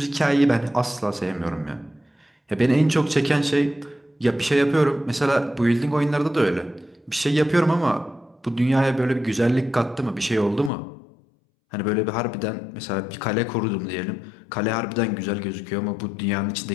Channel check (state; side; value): drops out; right; at 10.7 s